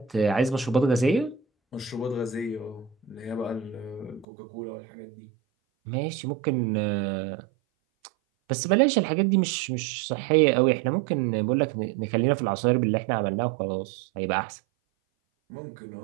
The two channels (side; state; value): left; drops out; at 4.2 s